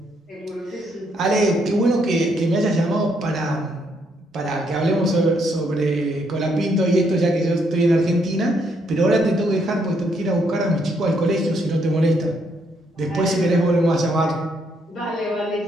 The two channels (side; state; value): both; normal; correlation 0.73